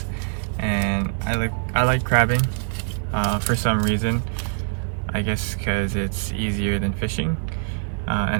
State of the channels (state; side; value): silent; left; digital silence